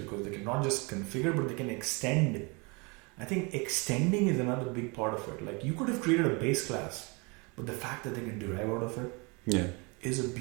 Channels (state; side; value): quieter; left; 29.6 dB